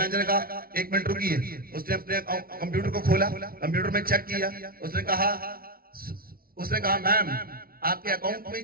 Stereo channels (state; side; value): late; left; 0.43 ms